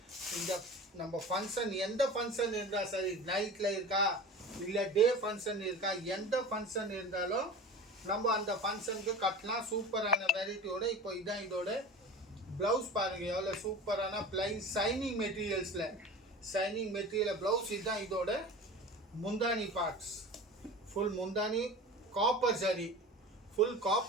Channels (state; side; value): normal; both; correlation 0.35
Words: இந்த நம்ம ஃபங்க்ஷன் எந்த ஃபங்க்ஷன் இருந்தால் சரி, நைட்டில் இருக்கா இல்லை டே ஃபங்க்ஷன் இருக்கா, எந்த ஃபங்க்ஷன் இருந்தாலும் நம்ம அந்த ஃபங்க்ஷனுக்கு கட்டலாம். சூப்பரான வெரைட்டியோட. இப்போ இதான் இதோட ப்ளவுஸ் பாருங்கள், எவ்வளோ சூப்பரான பிளைன் ஷைனிங் மெட்டீரியல்ஸில் ஷைனிங் மெட்டீரியல் ப்ளவுஸ். இதுதான் இதோட முந்தானி பார்ட்ஸ். ஃபுல் முந்தானி காப்பர் ஜரி, ஃபுல்